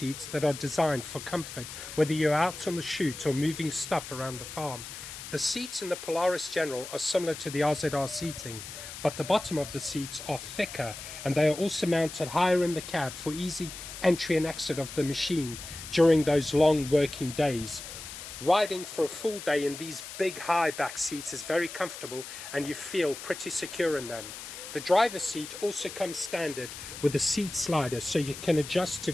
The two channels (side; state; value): left; noise; hiss, 11 dB below the sound